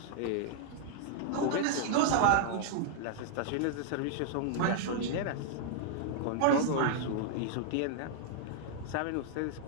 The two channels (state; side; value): different; both; correlation -0.01